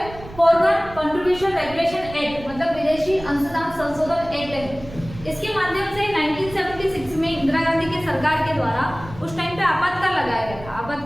फॉरेन कंट्रीब्यूशन रेगुलेशन एक्ट मतलब विदेशी अंशदान संशोधन एक्ट है। इसके माध्यम से 1976 में इंदिरा गांधी की सरकार के द्वारा उस टाइम पे आपातकाल लगाया गया था।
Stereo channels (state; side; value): noise; right; rumble, 16 dB below the sound